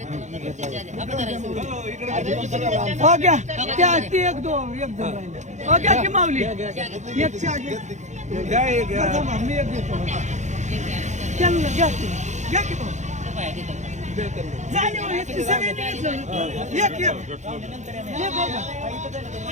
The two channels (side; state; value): left; late; 0.34 ms